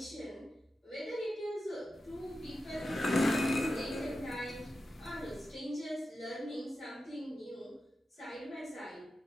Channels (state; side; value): normal; both; correlation 0.91